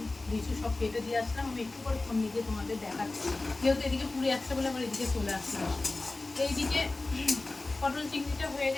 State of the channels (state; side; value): quieter; right; 3.2 dB